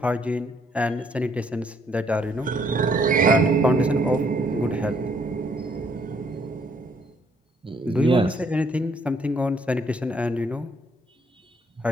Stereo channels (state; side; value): normal; both; correlation 0.67